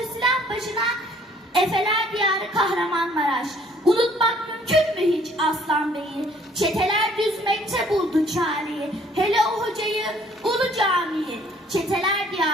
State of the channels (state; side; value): normal; both; correlation 0.59